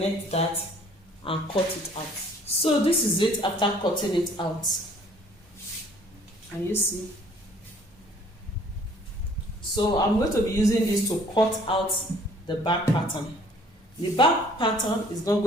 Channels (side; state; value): both; normal; correlation 0.57